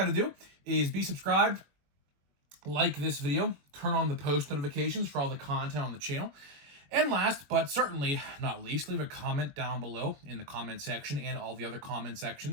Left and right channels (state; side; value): late; left; 21 ms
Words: to do is be subscribed, like this video, turn on the post notifications for all the content on the channel, and last but certainly not least, leave a comment down below in the comment section and all the other comment